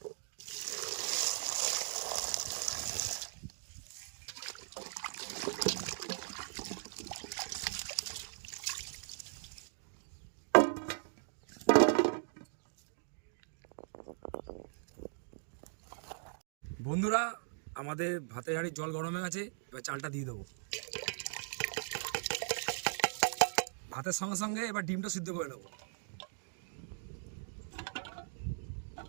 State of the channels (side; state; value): left; silent; digital silence